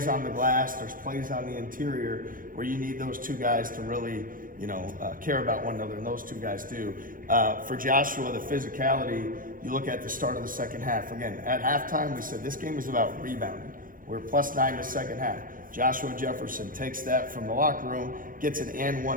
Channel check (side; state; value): left; late; 0.40 ms